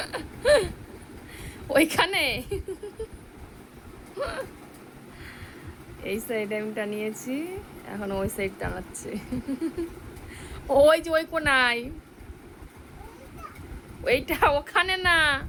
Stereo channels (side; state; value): both; identical; correlation 1.00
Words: ওইখানে এই সাইডে আমি টানিয়েছি, এখন ওই সাইড টানাচ্ছে ওই যে ওই কোনায়, ওইটা ওখানে না,